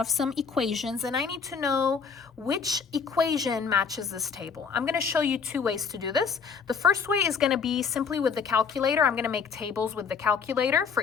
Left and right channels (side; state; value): right; quieter; 6.0 dB